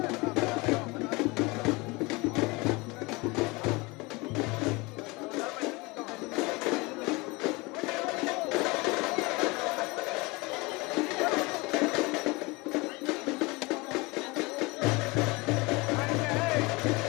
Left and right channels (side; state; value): right; quieter; 25.1 dB